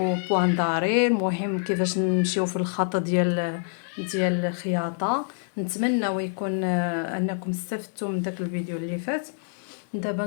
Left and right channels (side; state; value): right; silent; 61 dB below the other